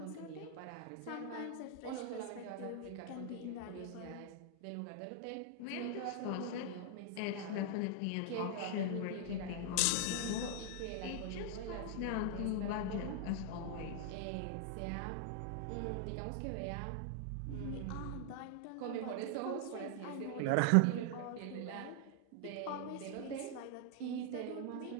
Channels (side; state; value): both; different; correlation 0.00